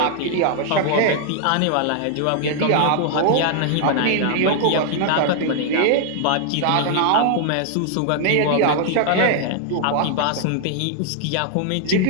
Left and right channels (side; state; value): both; different; correlation 0.00